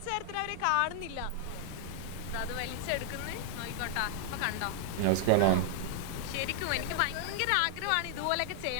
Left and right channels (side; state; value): both; different; correlation 0.00